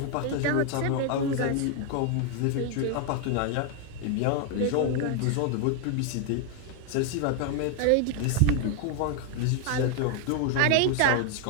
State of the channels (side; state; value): both; different; correlation 0.01